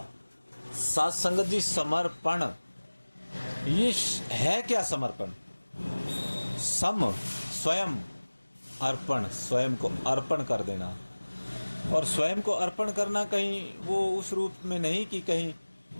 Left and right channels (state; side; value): inverted; both; correlation -1.00